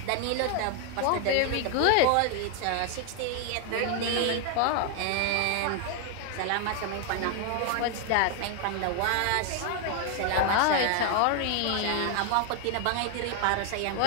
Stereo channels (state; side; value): different; both; correlation 0.00